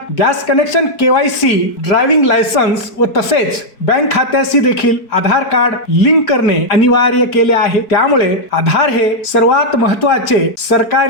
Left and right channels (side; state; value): right; late; 4.6 ms